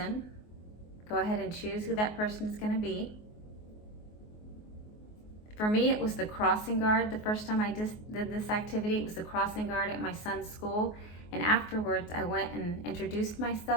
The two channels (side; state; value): right; late; 24 ms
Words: Go ahead and choose who that person is going to be. For me, it was the crossing guard. The first time I did this activity, it was the crossing guard at my son's school. And afterwards, I went and introduced